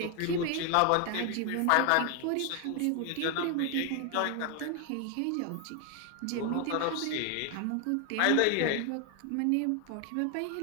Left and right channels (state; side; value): different; both; correlation 0.01